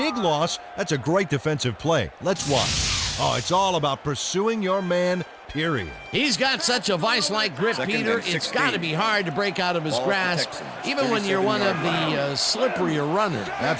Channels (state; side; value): identical; both; correlation 1.00